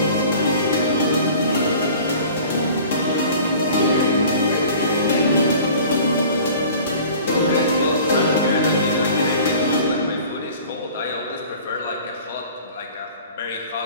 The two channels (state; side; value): inverted; both; correlation -0.45